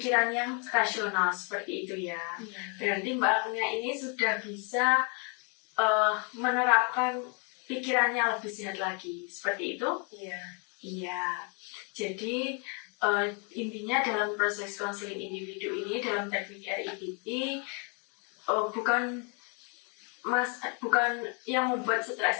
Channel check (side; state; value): right; quieter; 36.8 dB